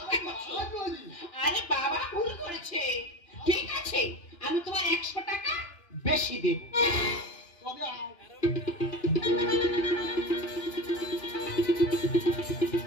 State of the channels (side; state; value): right; late; 2.9 ms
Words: আরে বাবা ভুল করেছে, ঠিক আছে আমি তোমার 100 টাকা বেশি দেব। তবে